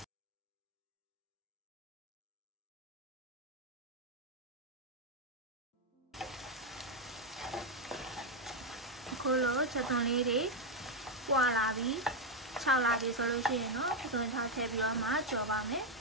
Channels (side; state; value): both; normal; correlation 0.03